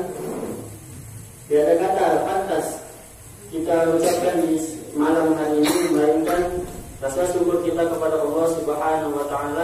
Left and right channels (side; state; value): both; identical; correlation 1.00